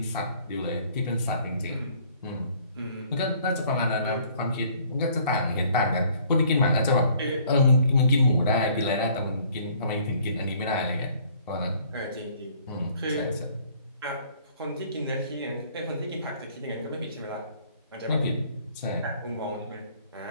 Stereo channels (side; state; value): both; inverted; correlation -0.58